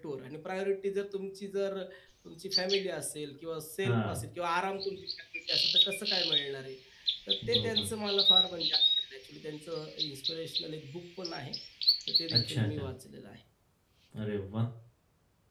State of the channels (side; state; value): both; identical; correlation 1.00